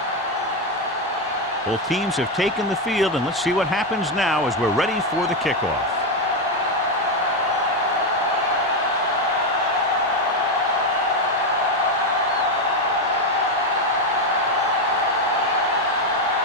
Both teams have taken the field, and let's see what happens now as we're ready for the kickoff.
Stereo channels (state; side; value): normal; both; correlation 0.08